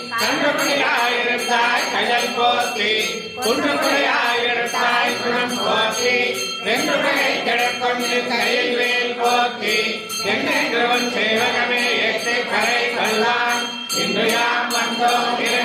கன்றுபடியாயிருந்தாய் கயல் போற்றி குன்றுபடியாயிருந்தாய் குணம் போற்றி வென்றுடையை கிடக்கொண்டு கையில் வேல் போற்றி என்னென்றவன் சேவகமே எட்டு கரை கொள்ளான் இன்று யாம் வந்தோம்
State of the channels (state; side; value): identical; both; correlation 1.00